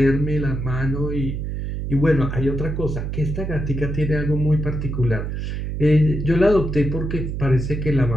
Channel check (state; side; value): noise; right; hum, 4 dB below the sound